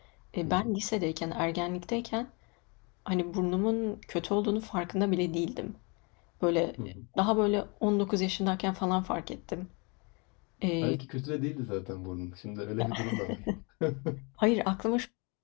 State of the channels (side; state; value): right; quieter; 31.1 dB